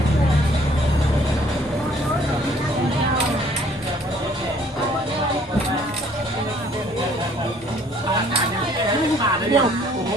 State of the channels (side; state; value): both; normal; correlation 0.59